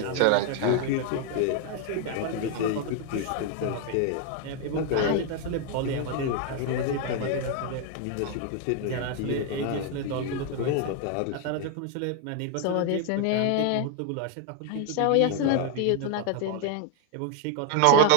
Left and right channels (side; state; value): both; different; correlation 0.00